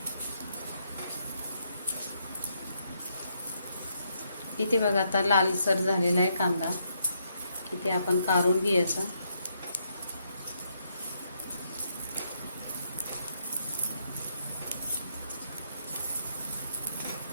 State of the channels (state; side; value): inverted; both; correlation -0.76